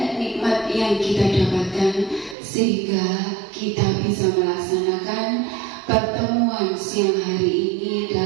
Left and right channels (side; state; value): left; drops out; at 2.4 s